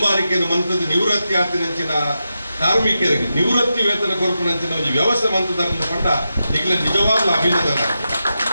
ಮಂತದ್ದು ನಿವೃತ್ತಿ ಆತಿನಂಚಿನ ಕಾರ್ಮಿಕರಿಗೆ ನಿವೃತ್ತಿ ವೇತನ ಕೊರಪನಂಚಿನ ಒಂದು ವ್ಯವಸ್ಥೆ ಮಂತದನ್ನು ಪಂಡ ನಿಖಿಲ ನಿಜವಾಗ್ಲೂ ಅಭಿನಂದನೆ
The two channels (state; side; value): inverted; both; correlation -0.89